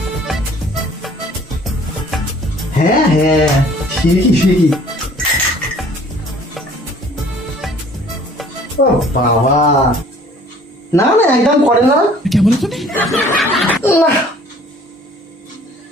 হ্যাঁ হ্যাঁ, ঠিকই ঠিকই। ও বাবা, না না একদম করে না। না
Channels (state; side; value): normal; both; correlation 0.54